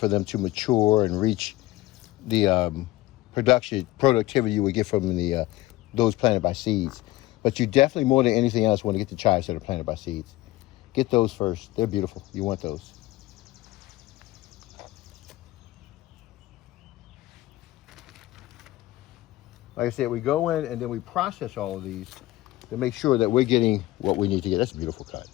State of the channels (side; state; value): right; quieter; 17.9 dB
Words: them to mature and reach the productivity you would get from the those planted by seeds. But you definitely, more than anything else, want to get the chives that are planted by seeds. Get those first. They're beautiful. You want those. Like I said, we go in and then we process all of these to make sure that we're getting what we need to get. That's a beautiful cut.